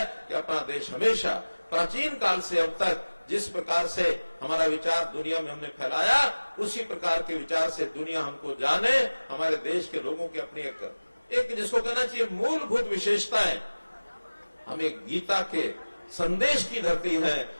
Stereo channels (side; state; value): both; inverted; correlation -1.00